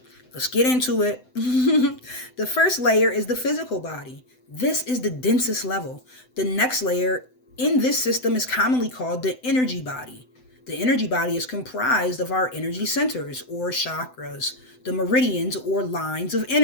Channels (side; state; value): right; late; 7.9 ms